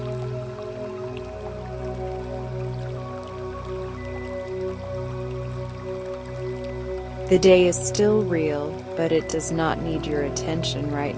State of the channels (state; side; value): identical; both; correlation 1.00